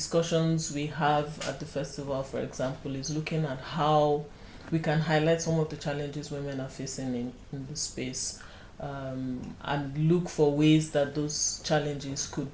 we have at the festival, for example, is looking at how we can highlight some of the challenges women are facing in the space, and look for ways that those challenges could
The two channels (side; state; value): both; identical; correlation 1.00